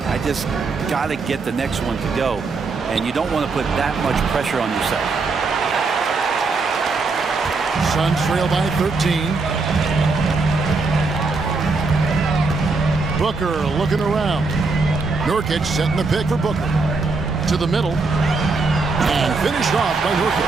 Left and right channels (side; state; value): left; quieter; 4.1 dB